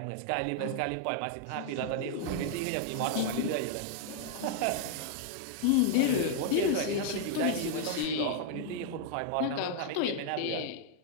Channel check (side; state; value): both; different; correlation 0.00